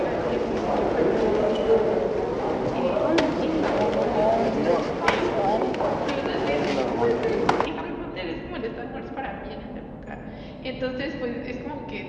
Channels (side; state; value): both; identical; correlation 1.00